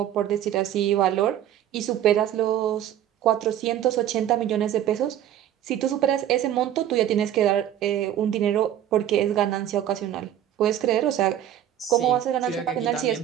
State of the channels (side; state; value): left; quieter; 11.2 dB